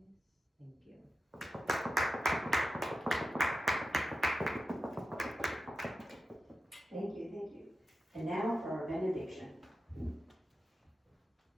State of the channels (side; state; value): both; normal; correlation 0.92